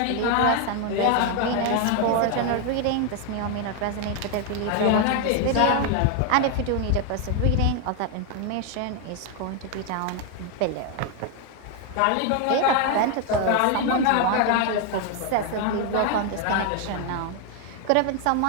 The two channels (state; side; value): different; both; correlation 0.01